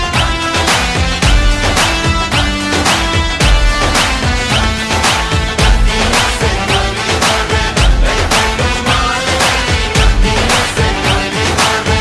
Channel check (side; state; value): both; identical; correlation 1.00